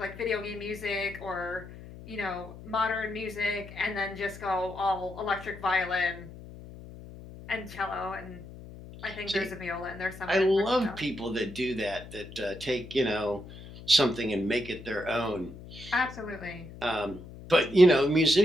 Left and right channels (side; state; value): left; noise; hum, 15 dB below the sound